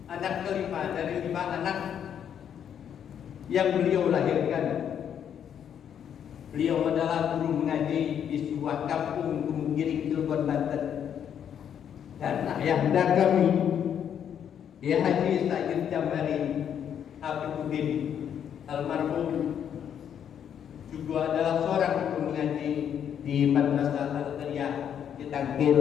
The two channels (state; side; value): quieter; right; 8.8 dB